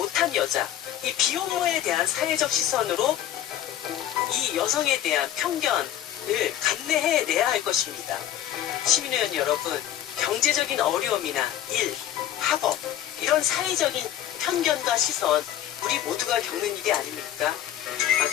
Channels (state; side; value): quieter; right; 11.7 dB